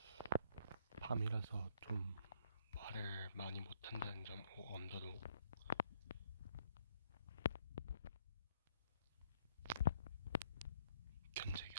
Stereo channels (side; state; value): both; inverted; correlation -0.67